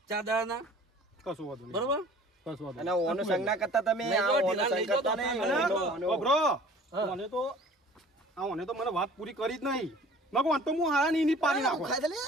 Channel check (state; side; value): normal; both; correlation 0.48